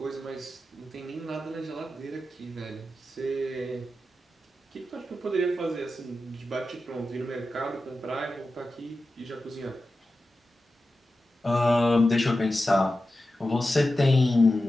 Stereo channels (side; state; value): both; normal; correlation 0.92